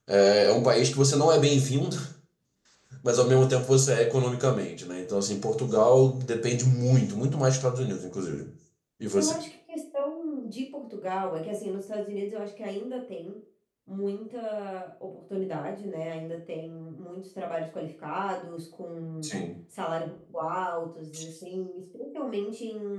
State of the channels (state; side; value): identical; both; correlation 1.00